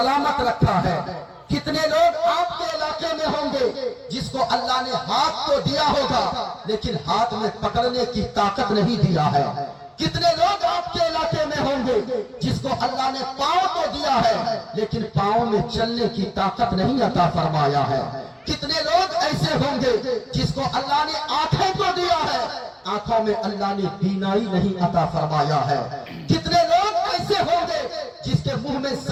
رکھا ہے۔ کتنے لوگ آپ کے علاقے میں ہوں گے جس کو اللہ نے ہاتھ تو دیا ہوگا لیکن ہاتھ میں پکڑنے کی طاقت نہیں دیا ہے۔ کتنے لوگ آپ کے علاقے میں ہوں گے جس کو اللہ نے پاؤں تو دیا ہے لیکن پاؤں میں چلنے کی طاقت نہیں عطا فرمایا ہے۔ کتنے لوگ ایسے ہوں گے جس کو اللہ نے آنکھیں تو دیا ہے، آنکھوں میں اللہ نے بینائی نہیں عطا فرمایا ہے۔ کتنے لوگ ایسے ہوں گے جس کے منہ میں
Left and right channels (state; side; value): identical; both; correlation 1.00